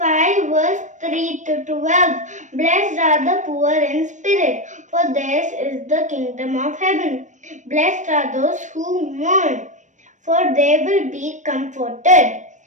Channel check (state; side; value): late; left; 0.35 ms